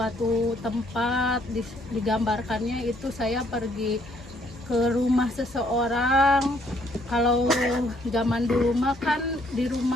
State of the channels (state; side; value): normal; both; correlation 0.67